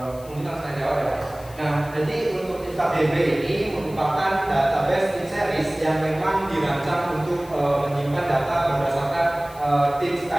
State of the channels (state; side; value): noise; left; hiss, 22 dB below the sound